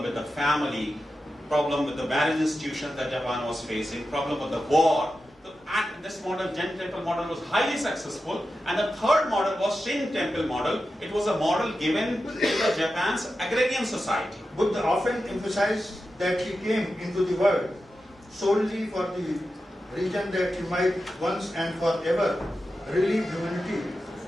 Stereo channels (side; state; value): both; normal; correlation 0.91